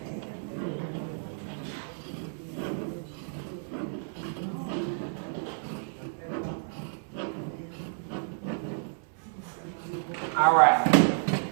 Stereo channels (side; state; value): left; silent; 57 dB below the other